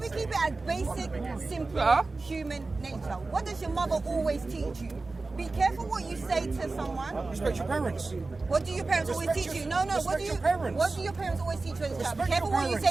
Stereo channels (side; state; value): left; quieter; 3.6 dB